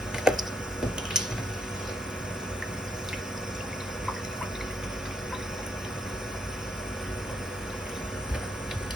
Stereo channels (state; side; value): normal; both; correlation 0.75